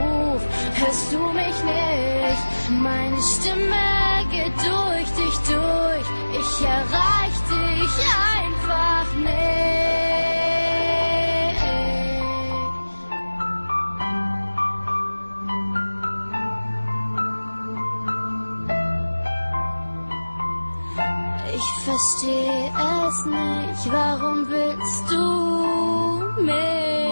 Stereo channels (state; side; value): inverted; both; correlation -1.00